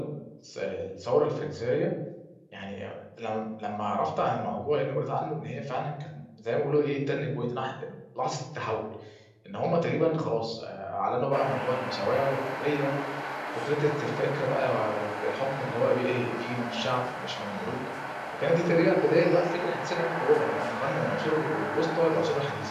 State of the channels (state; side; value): identical; both; correlation 1.00